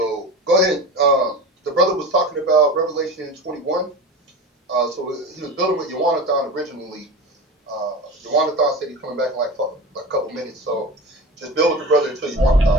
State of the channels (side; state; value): both; normal; correlation 0.30